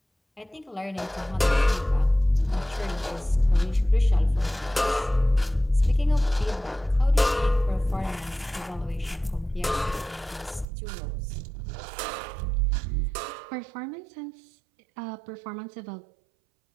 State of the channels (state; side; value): drops out; left; at 10.7 s